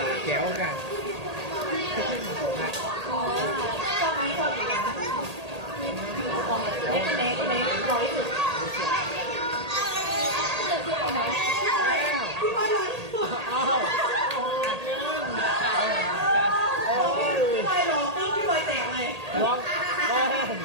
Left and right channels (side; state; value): left; late; 1.8 ms